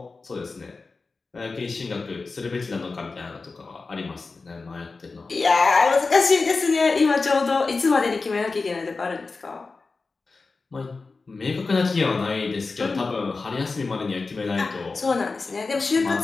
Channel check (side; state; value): right; quieter; 4.0 dB